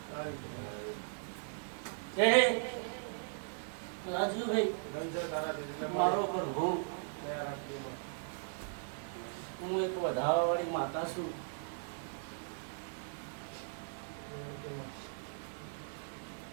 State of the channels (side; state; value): left; silent; digital silence